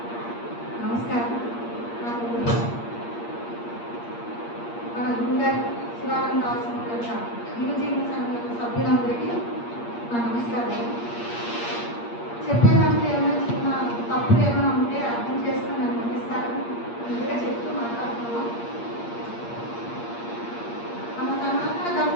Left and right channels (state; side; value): late; right; 8.5 ms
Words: నమస్కారం. మన గురుగారి శివానంద ఆశ్రమం యొక్క యువజీవన సంఘం సభ్యులందరికీ నా నమస్కారం. చెప్పేదాంట్లో ఏమైనా చిన్న తప్పులు ఏమైనా ఉంటే అర్థం చేసుకుని నన్ను అందిస్తారని ముందుగా చెప్తూ మాట్లాడుతున్నాం. మన సనాతన